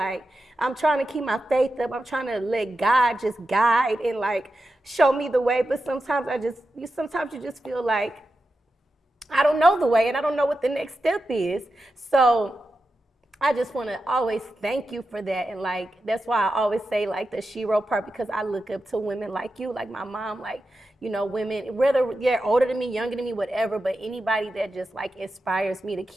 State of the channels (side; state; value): both; normal; correlation 0.90